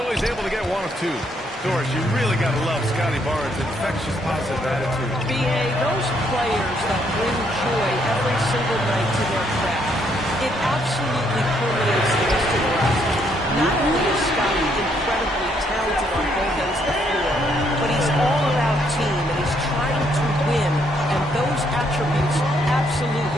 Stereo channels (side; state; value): both; normal; correlation 0.72